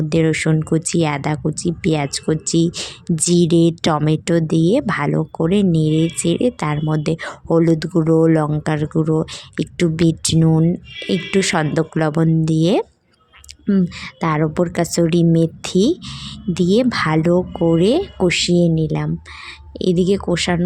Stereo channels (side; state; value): both; identical; correlation 1.00